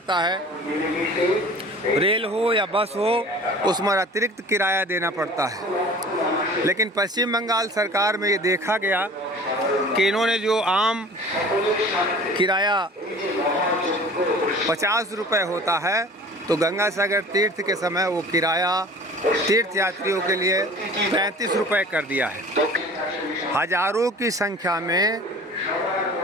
है। रेल हो या बस हो, उसमें अतिरिक्त किराया देना पड़ता है। लेकिन पश्चिम बंगाल सरकार में ये देखा गया कि इन्होंने जो आम किराया 50 रुपये होता है तो गंगा सागर तीर्थ के समय वो किराया तीर्थ यात्रियों के लिए 35 रुपये कर दिया है। हजारों की संख्या में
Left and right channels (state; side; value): normal; both; correlation 0.44